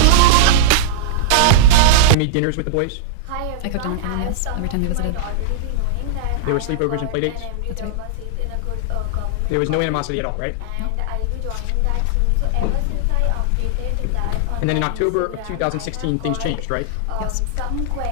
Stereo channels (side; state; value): both; different; correlation -0.01